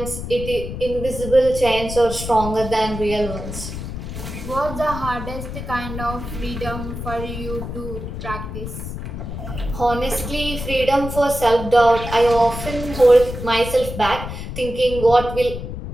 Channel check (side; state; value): left; noise; rumble, 8 dB below the sound